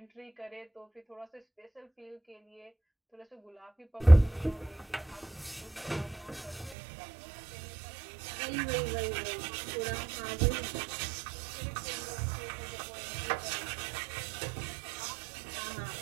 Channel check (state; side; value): drops out; left; at 6.8 s